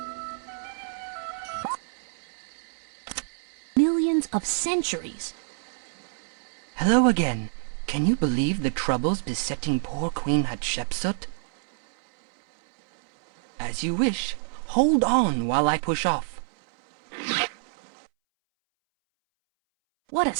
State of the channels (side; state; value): left; silent; 60 dB below the other